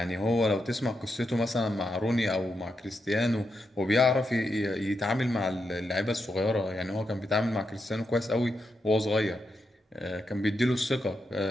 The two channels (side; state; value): both; normal; correlation 0.84